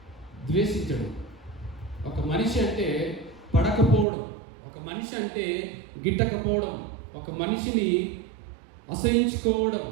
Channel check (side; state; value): left; drops out; at 4.0 s